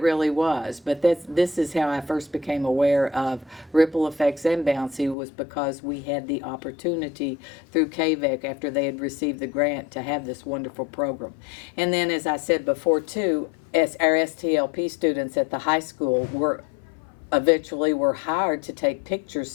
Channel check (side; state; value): right; drops out; at 5.2 s